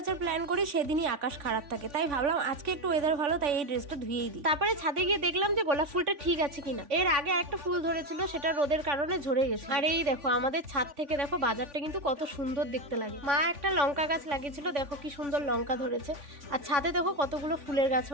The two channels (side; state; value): left; late; 3.5 ms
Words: প্ল্যান করি সেদিনই আকাশ খারাপ থাকে, তাই ভাবলাম আজকে একটু ওয়েদার ভালো, তাই এই ড্রেসটা ধুয়েই দিই। তারপরে ছাদে গিয়ে দেখলাম যে গোলাপ ফুলটা ঠিক আছে কিনা। এর আগে একটা ফুল ধরেছিল, সেটা রোদের কারণে ঝরে গেছে। আর এই দেখো আমাদের ছাদ থেকে দেখো বাজারটা কিন্তু কত সুন্দর দেখতে লাগে। মা একটা লঙ্কা গাছ লাগিয়েছিল, দেখো কি সুন্দর লঙ্কা ধরেছে। আর ছাদে দেখো কতগুলো ফুলের